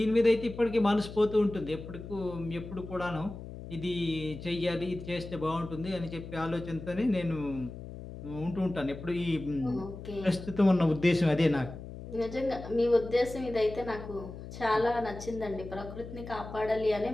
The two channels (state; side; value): noise; left; hum, 12 dB below the sound